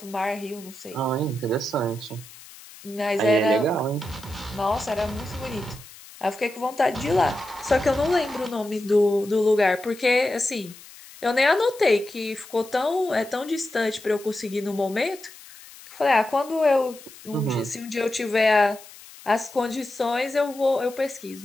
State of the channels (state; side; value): noise; left; hiss, 19 dB below the sound